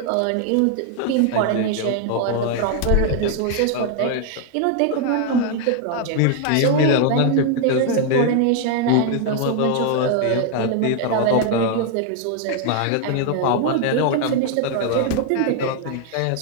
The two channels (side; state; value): both; different; correlation 0.00